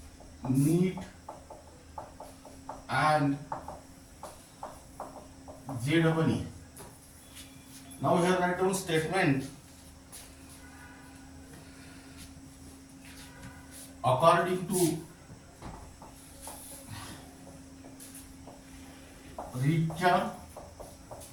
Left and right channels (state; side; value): identical; both; correlation 1.00